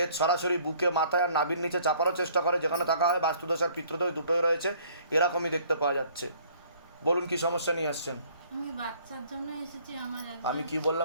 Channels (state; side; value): inverted; both; correlation -0.58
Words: সরাসরি বুকে, মাথায় আর নাভির নিচে চাপারও চেষ্টা করে, যেখানে থাকা হয় বাস্তুদোষ আর পিতৃদোষ দুটোই রয়েছে, এরকমই দেখতে পাওয়া যাচ্ছে। বলুন কি সমস্যা নিয়ে আসছেন? আমি বাচ্চার জন্য এসেছি। আমার আমি কি